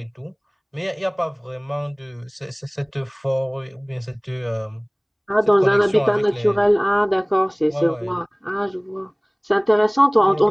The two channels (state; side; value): identical; both; correlation 1.00